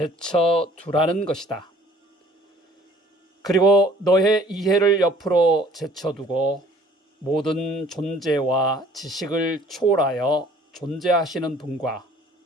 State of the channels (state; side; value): normal; both; correlation 0.54